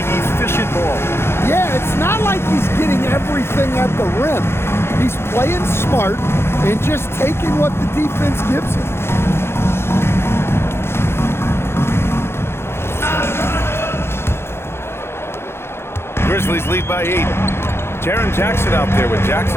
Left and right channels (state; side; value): late; right; 0.12 ms